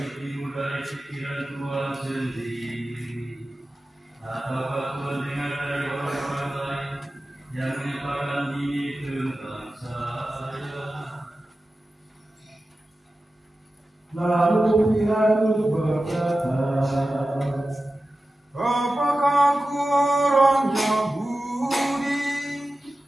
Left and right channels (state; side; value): normal; both; correlation 0.94